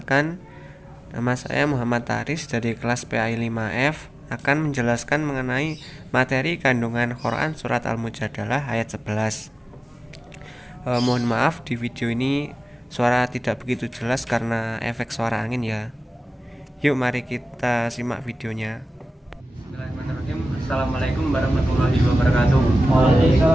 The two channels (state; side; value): normal; both; correlation 0.96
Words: nama saya Muhammad Taris dari kelas PAI 5F akan menjelaskan mengenai materi kandungan Quran Surat Al-Mujadalah ayat 11. Mohon maaf di video ini suara tidak begitu jelas karena efek suara angin ya. Yuk mari kita simak videonya. Bismillahirrahmanirrahim. Assalamualaikum warahmatullahi wabarakatuh.